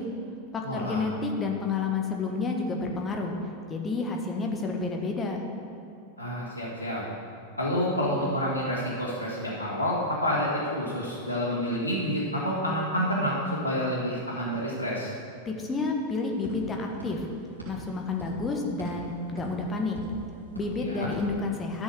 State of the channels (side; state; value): both; normal; correlation 0.02